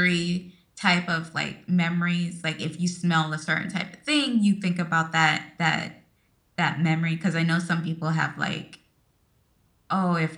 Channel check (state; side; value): identical; both; correlation 1.00